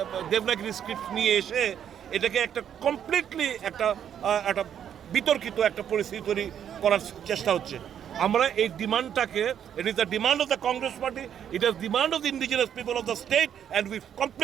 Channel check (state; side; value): quieter; left; 9.2 dB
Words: দেবনাগরী স্ক্রিপ্ট নিয়ে এসে এটাকে একটা কমপ্লিটলি একটা বিতর্কিত একটা পরিস্থিতি তৈরি করার চেষ্টা হচ্ছে। আমরা এই ডিমান্ডটাকে, it is the demand of the Congress party, it is demand of the indigenous people of the state and we